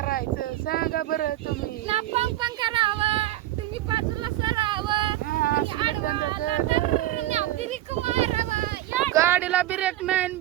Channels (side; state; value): left; quieter; 15.0 dB